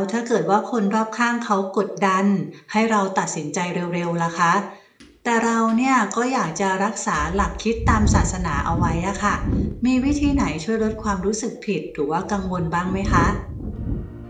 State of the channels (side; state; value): both; identical; correlation 1.00